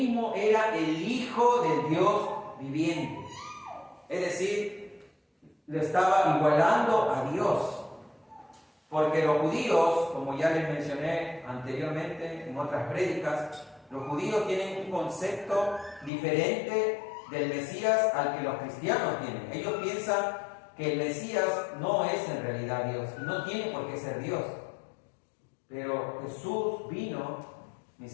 era el Hijo del Dios viviente. Es decir, le estaba igualando a Dios. Porque los judíos, como ya les mencioné anteriormente en otras prédicas, los judíos tienen un concepto diferente del Mesías al que los cristianos tienen. Ellos piensan que el Mesías no es en realidad Dios, y no tiene por qué ser Dios. Pero Jesús vino, mis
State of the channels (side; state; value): right; drops out; at 16.1 s